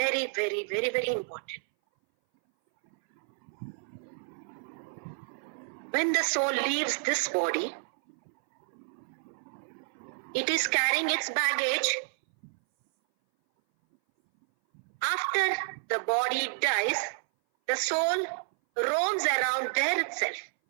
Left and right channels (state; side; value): silent; left; 58 dB below the other